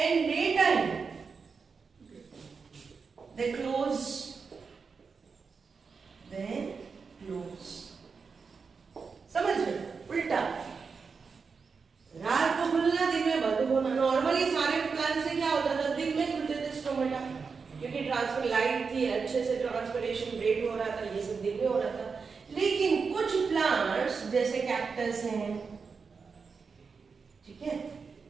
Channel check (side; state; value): left; quieter; 5.2 dB